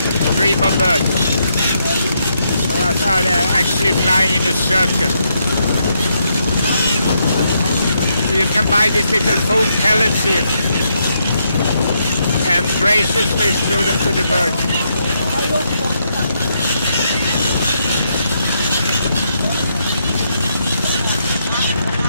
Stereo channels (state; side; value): inverted; both; correlation -0.78